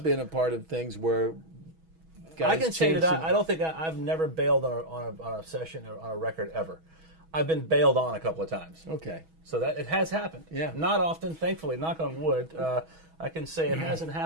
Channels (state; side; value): late; left; 6.2 ms